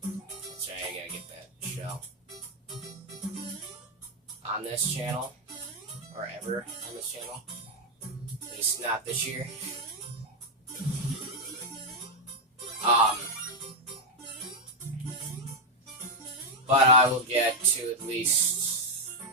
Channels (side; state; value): both; normal; correlation 0.02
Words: That's right, I gotta get that shell. On this channel, or ever on this channel. At least not this year. But I will get to at least,